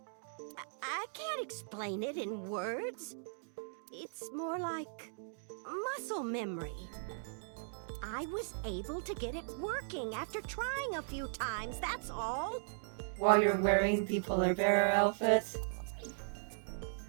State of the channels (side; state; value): left; silent; digital silence